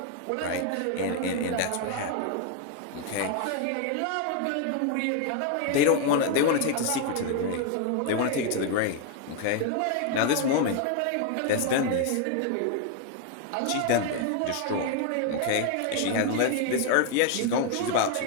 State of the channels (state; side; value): different; both; correlation 0.00